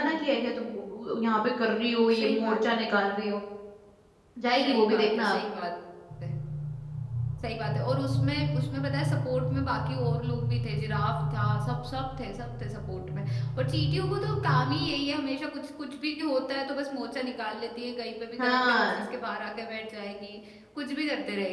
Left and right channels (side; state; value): both; identical; correlation 1.00